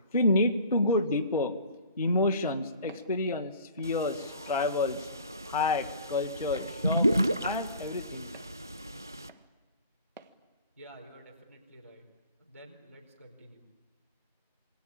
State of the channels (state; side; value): inverted; both; correlation -0.47